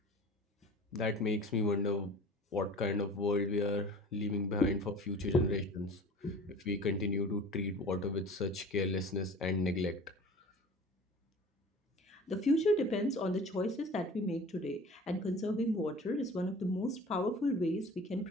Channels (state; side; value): normal; both; correlation 0.41